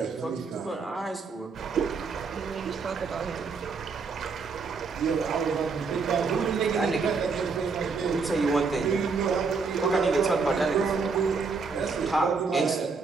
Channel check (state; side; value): quieter; left; 4.8 dB